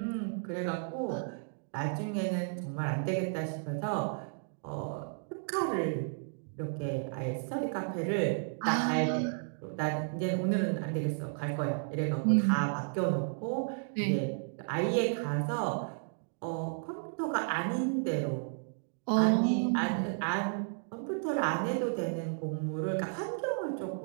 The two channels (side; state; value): left; silent; digital silence